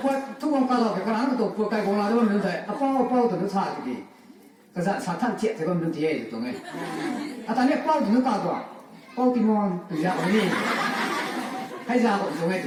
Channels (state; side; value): identical; both; correlation 1.00